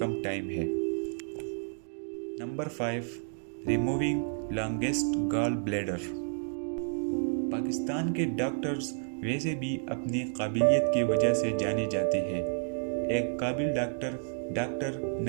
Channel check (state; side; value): silent; left; digital silence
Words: ٹائم ہے۔ نمبر 5، ریموونگ لانگسٹ گال بلیڈر۔ پاکستان کے ڈاکٹرز ویسے بھی اپنی قابلیت کی وجہ سے جانے جاتے ہیں۔ ایک قابل ڈاکٹر